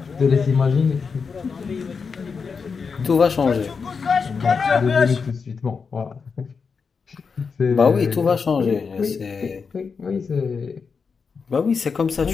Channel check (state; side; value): quieter; right; 5.4 dB